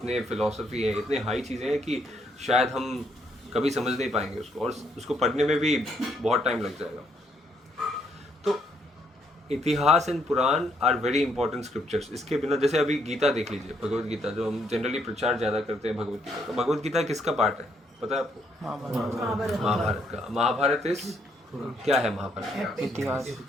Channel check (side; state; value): both; normal; correlation 0.72